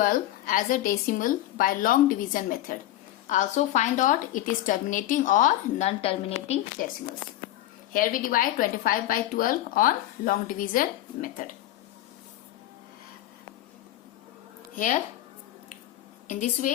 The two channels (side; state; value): right; quieter; 14.2 dB